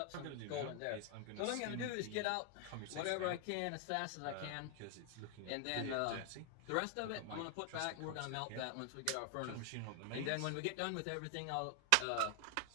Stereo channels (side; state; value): both; different; correlation 0.00